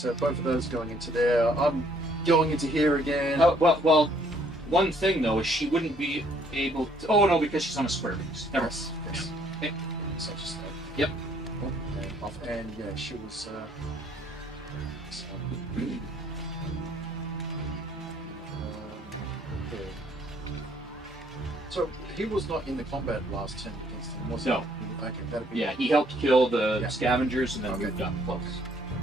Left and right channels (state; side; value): normal; both; correlation 0.64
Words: both of those going into there. I'm going into here again. Oh, well, one thing though is she wouldn't be able to. Oh no, because she's on a square base. Never. Yes. Okay. So just Yep. and off, and yeah, she was. So he was not in the combat last turn against him, was he? No. Okay, that'd be. Yeah, he helped kill the Yeah. scavengers and then Okay. moved up close.